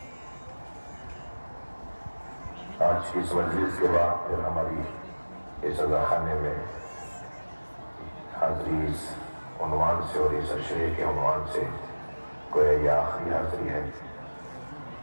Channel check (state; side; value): inverted; both; correlation -1.00